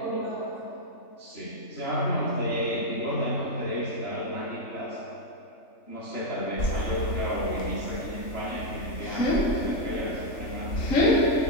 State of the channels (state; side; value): late; right; 3.4 ms